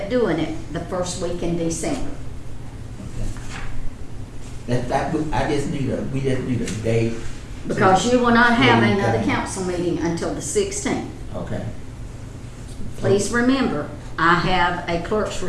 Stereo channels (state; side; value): identical; both; correlation 1.00